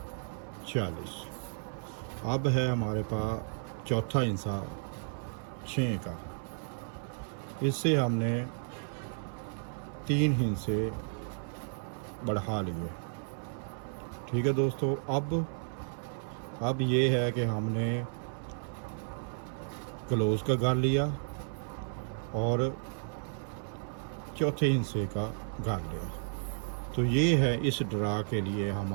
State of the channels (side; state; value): left; silent; 56 dB below the other